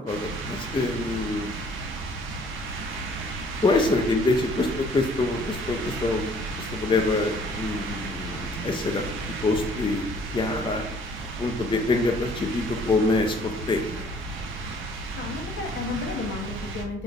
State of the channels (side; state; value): both; normal; correlation 0.57